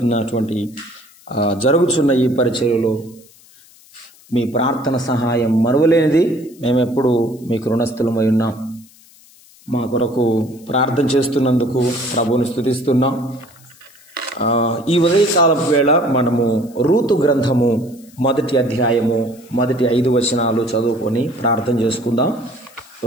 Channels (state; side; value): noise; left; hiss, 26 dB below the sound